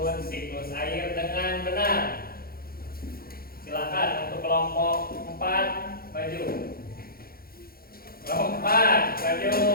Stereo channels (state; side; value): late; right; 0.44 ms